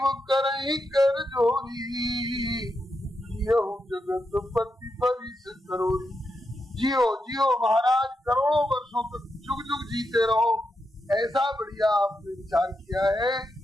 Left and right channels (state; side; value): normal; both; correlation 0.85